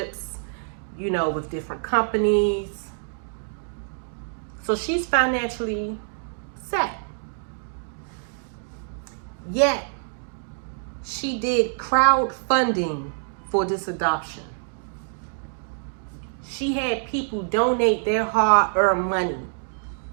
with different companies. So she's financially set. Yet, she did crowdfunding for this adoption. She had people donate their hard-earned money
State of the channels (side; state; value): left; silent; digital silence